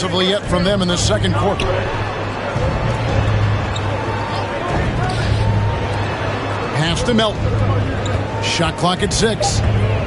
yet from them in the second quarter. Pass to Melton. Shot clock at 6.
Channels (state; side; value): identical; both; correlation 1.00